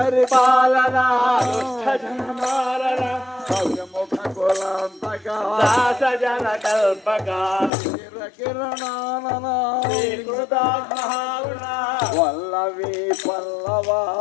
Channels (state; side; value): drops out; right; at 7.7 s